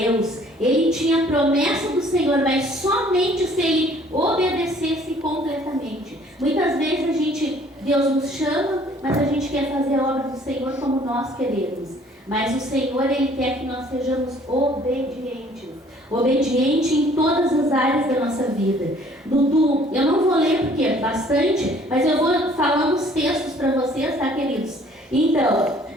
Ele tinha a promessa do Senhor, mas somente se ele obedecesse completamente. Muitas vezes Deus nos chama, mas a gente quer fazer a obra do Senhor como nós queremos. Mas o Senhor, Ele quer que nós sejamos obedientes. Obediente em todas as áreas da nossa vida. Eu não vou ler porque é bastante, mas eu vou falando os textos para vocês, tá, queridos? Então,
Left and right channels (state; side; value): normal; both; correlation 0.57